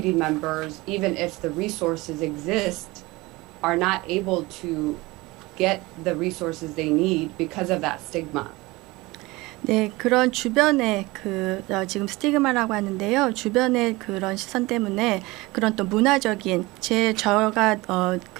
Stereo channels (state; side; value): quieter; left; 21.9 dB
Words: members, even if the resources exist, are not able to get the resources they need because of that stigma. 네, 그런 주변에 지금 스티그마라고 하는데요. 주변의 그런 시선 때문에 그런 또 문화적인 저가